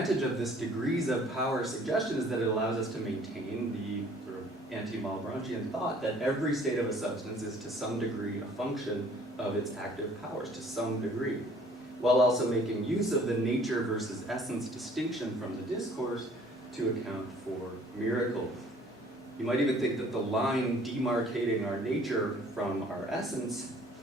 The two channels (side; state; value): both; normal; correlation 0.55